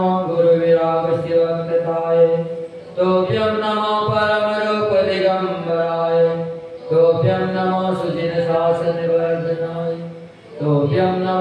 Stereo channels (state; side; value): identical; both; correlation 1.00